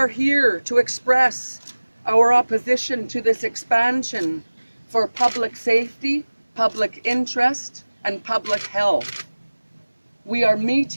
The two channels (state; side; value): inverted; both; correlation -1.00